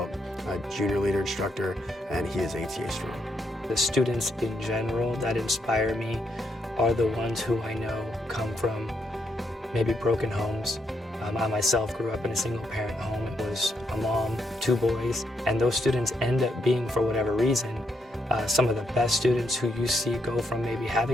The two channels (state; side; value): normal; both; correlation 0.78